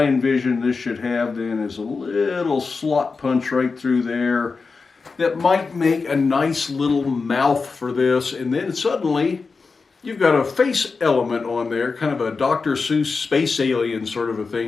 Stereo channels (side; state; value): right; quieter; 4.5 dB